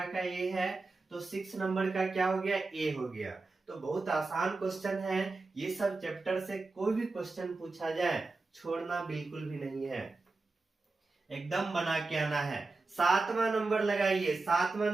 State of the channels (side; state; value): left; quieter; 3.6 dB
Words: का ए है, तो 6 नंबर का क्या हो गया, ए हो गया। तो बहुत आसान क्वेश्चन है, ये सब चैप्टर से कोई भी क्वेश्चन पूछा जाए छोड़ना बिल्कुल भी नहीं है, एकदम बना के आना है। 7वां नंबर लगाइए, 7वां